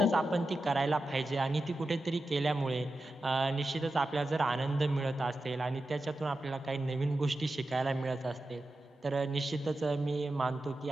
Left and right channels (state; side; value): normal; both; correlation 0.92